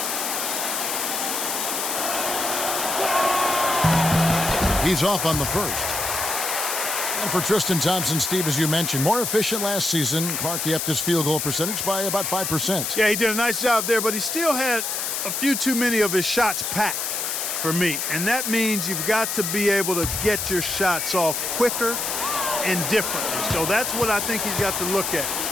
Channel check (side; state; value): left; noise; hiss, 2 dB below the sound